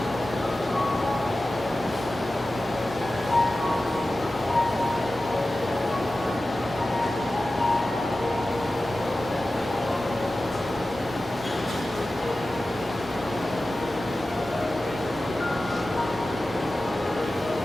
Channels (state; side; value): normal; both; correlation 0.95